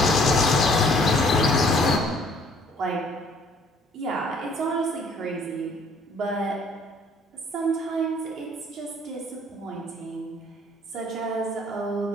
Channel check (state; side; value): normal; both; correlation 0.59